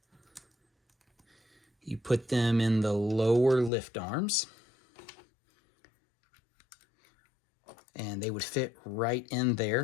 You put them in the lower lift arms, and they would fit right in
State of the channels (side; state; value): right; drops out; at 3.7 s